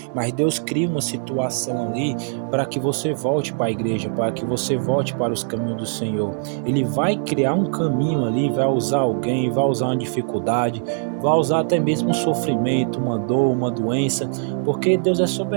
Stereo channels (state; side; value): silent; left; 65 dB below the other